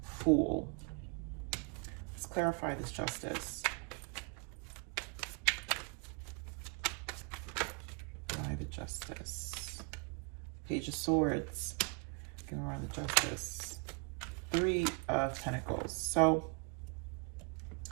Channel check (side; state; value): left; quieter; 33.0 dB